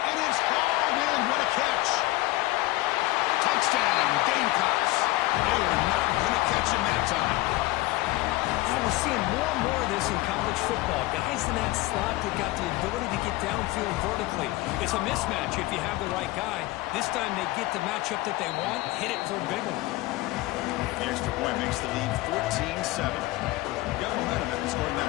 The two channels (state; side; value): quieter; right; 19.1 dB